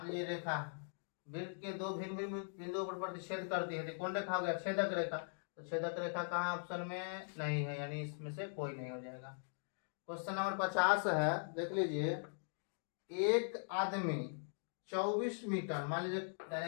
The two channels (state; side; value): silent; right; digital silence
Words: लीजिए रेखा वृत्त के दो भिन्न भिन्न बिंदुओं पर प्रतिच्छेद करती है, तो कौन रेखा हो गया छेदक रेखा, तो छेदक रेखा कहाँ ऑप्शन में नहीं है, यानी इसमें से कोई नहीं हो जाएगा। क्वेश्चन नंबर 50 है, देख लीजिए, एक आदमी 24 मीटर, मान लीजिए